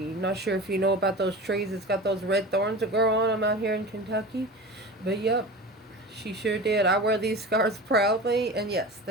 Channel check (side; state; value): both; normal; correlation 0.32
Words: Not sure if you know about those trees. It's got those red thorns that grow on them out here in Kentucky, but yep, she sure did. I wear these scars proudly, and yes,